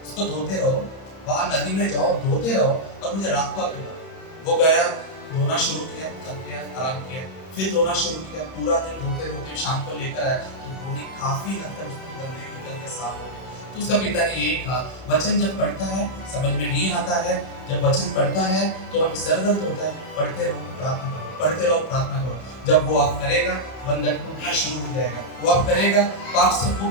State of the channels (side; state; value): right; late; 31 ms